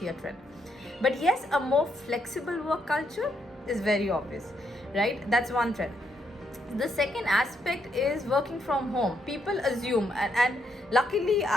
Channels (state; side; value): normal; both; correlation 0.76